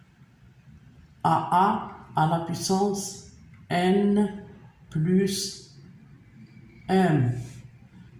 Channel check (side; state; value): both; identical; correlation 1.00